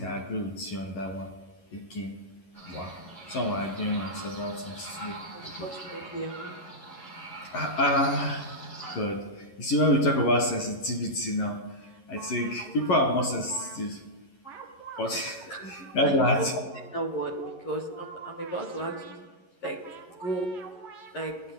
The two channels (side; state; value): right; late; 11 ms